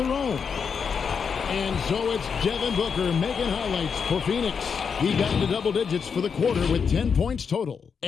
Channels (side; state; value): right; quieter; 6.3 dB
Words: own. And so it's Devin Booker making highlights for Phoenix. He got into double digits for the quarter with 10 points total.